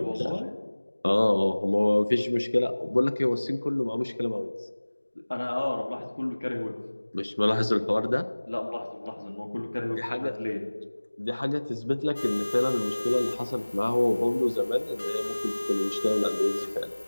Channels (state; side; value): inverted; both; correlation -1.00